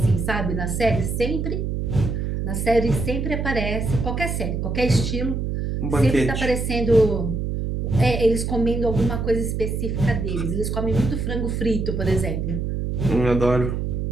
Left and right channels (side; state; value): right; noise; hum, 2 dB below the sound